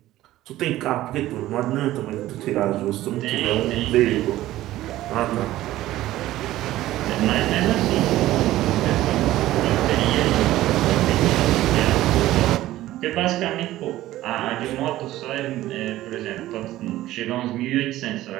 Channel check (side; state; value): left; quieter; 15.3 dB